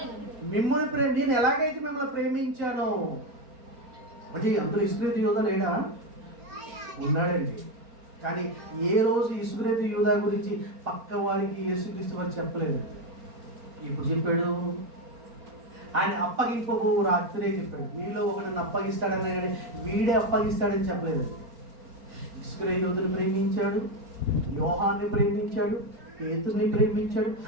నేను ఎలాగైతే మిమ్మల్ని ప్రేమించానో. అంటే అందులో ఇస్కరియోతు యూదా లేడా? ఉన్నాడండి. కానీ ఏ రోజు ఇస్కరియోతు యూదా గురించి పక్క వారికి యేసుక్రీస్తు వారు చెప్పలేదు. ఇప్పుడు చెప్పాడు. ఆయన అప్పగింపబో రాత్రే చెప్పాడు. మీలో ఒకరిని అప్పగిస్తాడని, కానీ వీడే అప్పగిస్తాడని చెప్పలేదు. ఇస్కరియోతుని ప్రేమించాడు, యోహాన్ని ప్రేమించాడు, పేతురుని ప్రేమించాడు.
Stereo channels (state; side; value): late; left; 4.4 ms